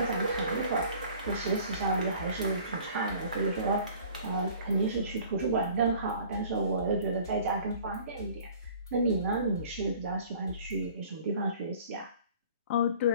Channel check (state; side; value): inverted; both; correlation -0.49